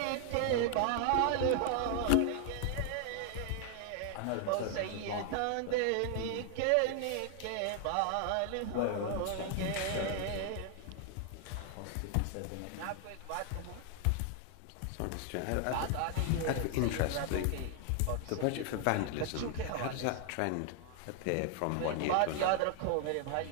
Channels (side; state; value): both; different; correlation 0.00